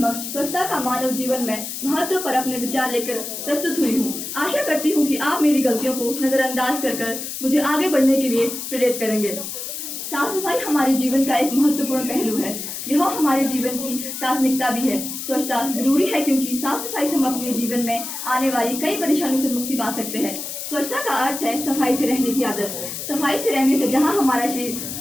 स्वच्छता का मानव जीवन में महत्व पर अपने विचार लेकर प्रस्तुत हुई हूँ। आशा करती हूँ कि आप मेरी गलतियों को नजरअंदाज कर मुझे आगे बढ़ने के लिए प्रेरित करेंगे। साफ सफाई हमारे जीवन का एक महत्वपूर्ण पहलू है। यह हमारे जीवन की प्राथमिकता भी है। स्वच्छता जरूरी है क्योंकि साफ सफाई से हम अपने जीवन में आने वाली कई परेशानियों से मुक्ति पा सकते हैं। स्वच्छता का अर्थ है सफाई से रहने की आदत। सफाई से रहने से जहाँ हमारा शरीर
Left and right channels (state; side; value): noise; left; hiss, 7 dB below the sound